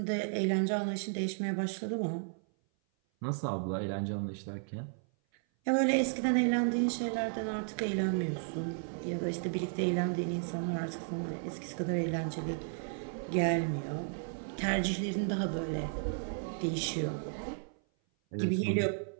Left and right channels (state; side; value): silent; left; 55 dB below the other